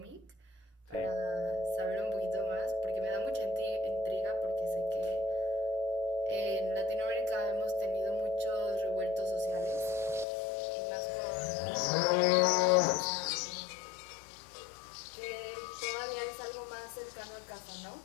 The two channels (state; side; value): drops out; right; at 10.2 s